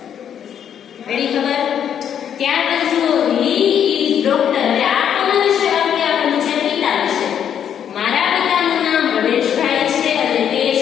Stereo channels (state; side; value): quieter; right; 8.9 dB